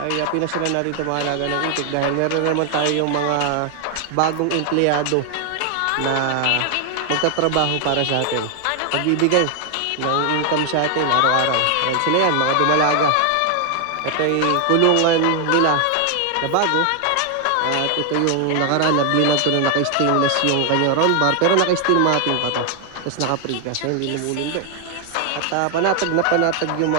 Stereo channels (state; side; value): different; both; correlation 0.00